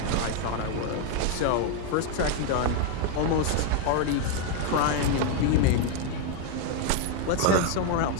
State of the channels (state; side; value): different; both; correlation 0.01